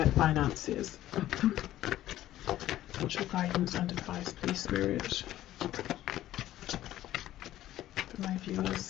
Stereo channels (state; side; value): quieter; right; 13.8 dB